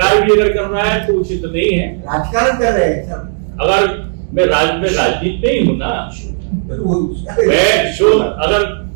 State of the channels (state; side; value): silent; left; digital silence